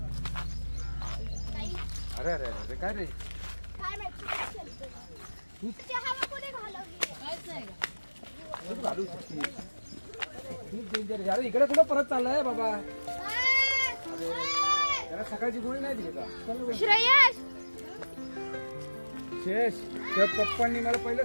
अरे अरे अरे काय रे. काय माहिती तू हवा कोणी घालवली काहीच नाही तू घालू शकते. तू डेंजर. अरे इकडे कुठं परत चाललाय बाबा. त्याला सकाळची गोळी नाही दिली का. श्रेयश शेष त्या पप्पांनी मला पहिलं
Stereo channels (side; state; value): both; inverted; correlation -1.00